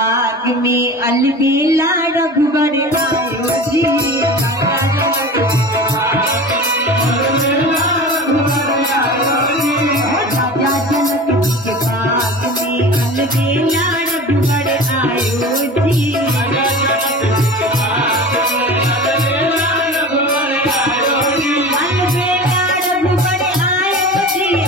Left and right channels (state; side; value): normal; both; correlation 0.34